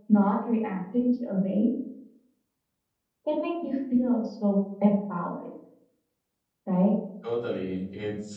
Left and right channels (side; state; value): both; identical; correlation 1.00